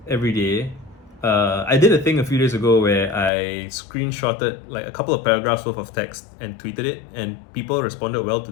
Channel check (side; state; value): right; drops out; at 3.3 s